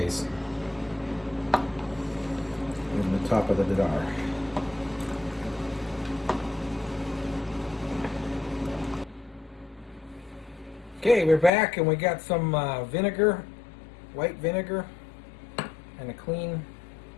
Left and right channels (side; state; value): right; drops out; at 11.5 s